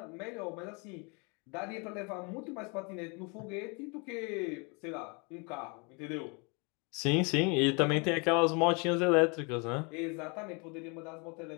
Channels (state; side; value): quieter; right; 32.3 dB